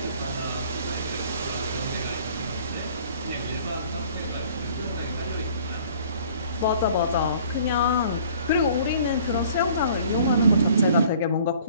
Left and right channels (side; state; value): both; inverted; correlation -0.53